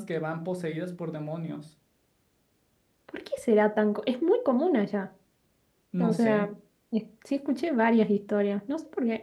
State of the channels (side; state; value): both; identical; correlation 1.00